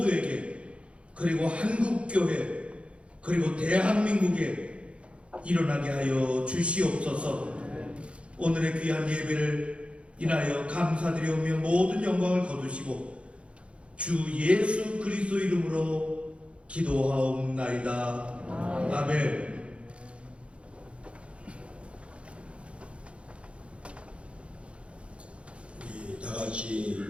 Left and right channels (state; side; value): late; left; 0.060 ms